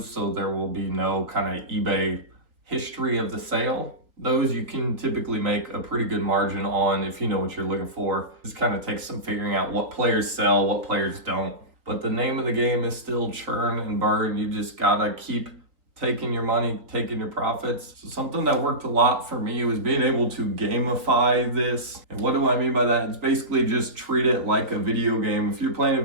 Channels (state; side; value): late; left; 3.8 ms